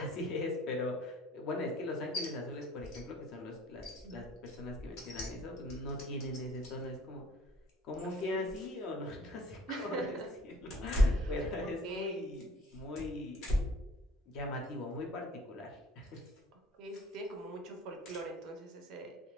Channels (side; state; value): both; normal; correlation 0.53